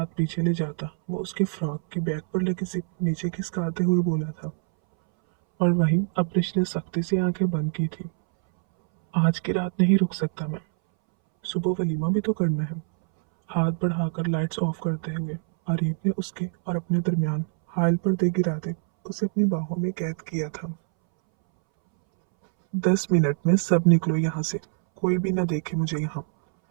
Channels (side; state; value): left; silent; 62 dB below the other